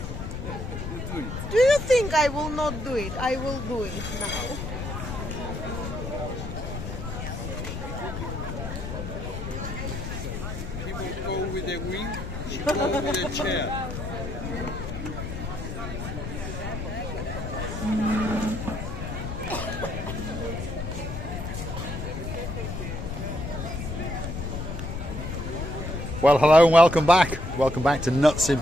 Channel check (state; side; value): noise; left; rumble, 6 dB below the sound